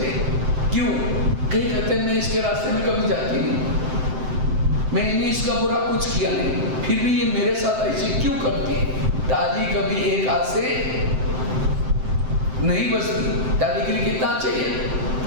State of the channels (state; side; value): late; left; 7.7 ms